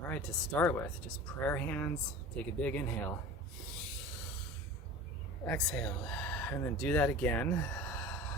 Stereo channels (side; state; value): both; normal; correlation 0.37